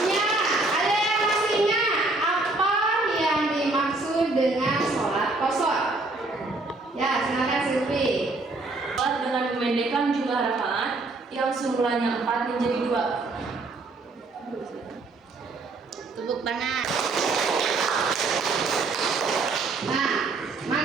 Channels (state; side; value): quieter; left; 3.3 dB